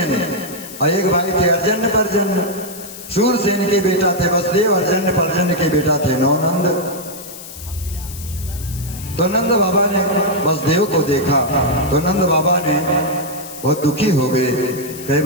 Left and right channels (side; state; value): left; noise; hiss, 14 dB below the sound